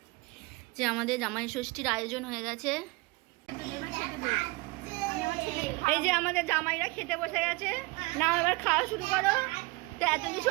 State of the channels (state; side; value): quieter; left; 24.6 dB